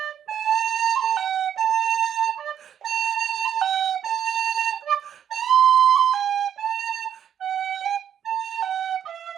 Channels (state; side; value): quieter; left; 9.2 dB